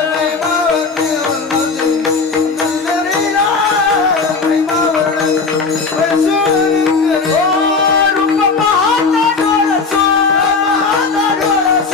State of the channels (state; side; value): quieter; right; 4.5 dB